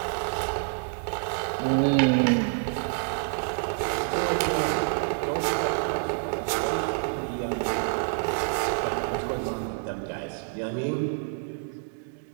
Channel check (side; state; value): left; silent; 60 dB below the other